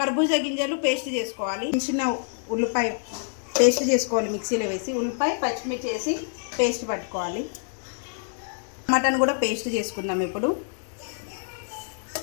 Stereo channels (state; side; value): silent; right; digital silence